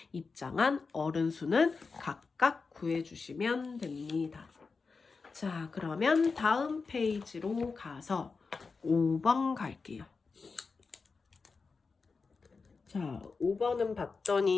입장한 어른 수는 각각 구해주시면 됩니다. 자, 그러면 다음 페이지로 가서 5번 갈게요. 자, 5번은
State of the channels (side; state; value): right; quieter; 4.6 dB